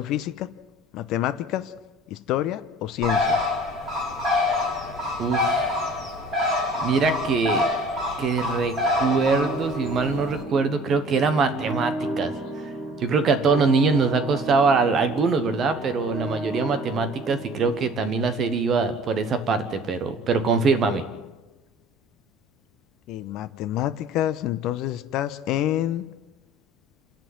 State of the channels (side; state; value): both; normal; correlation 0.48